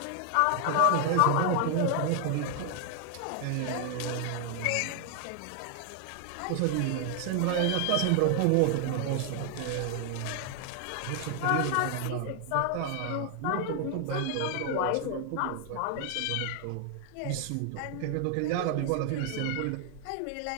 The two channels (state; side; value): different; both; correlation 0.00